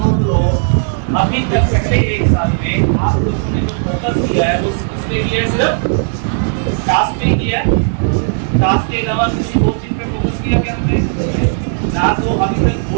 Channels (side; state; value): left; silent; digital silence